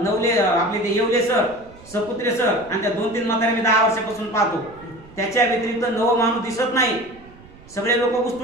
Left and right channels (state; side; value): noise; right; rumble, 23 dB below the sound